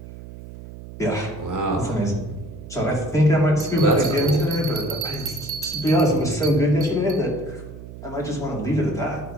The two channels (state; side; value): noise; right; hum, 14 dB below the sound